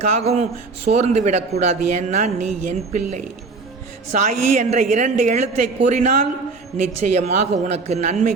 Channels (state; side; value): quieter; left; 4.1 dB